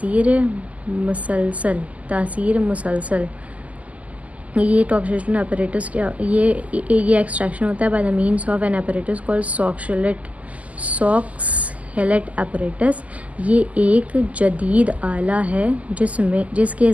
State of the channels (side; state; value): left; late; 0.071 ms